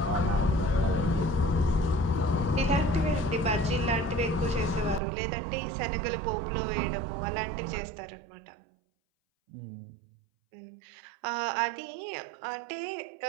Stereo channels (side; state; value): left; drops out; at 5.0 s